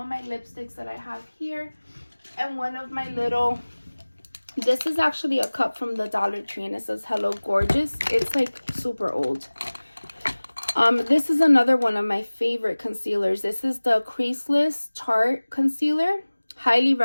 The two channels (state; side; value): inverted; both; correlation -1.00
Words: my lipsticks that I have here. And one of my little, this is actually a cup from the Dollar Tree and it says Hello Gorgeous. It's like super old. This is another one of my favorite concealers. This is the Creaseless Tarte Concealer. Highly